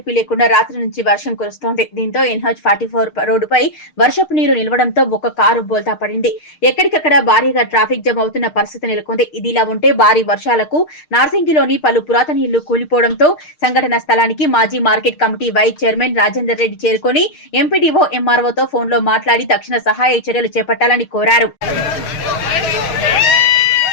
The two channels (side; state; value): right; late; 6.5 ms